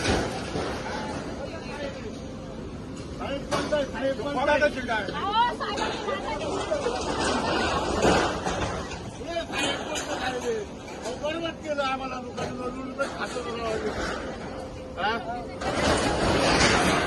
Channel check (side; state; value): both; identical; correlation 1.00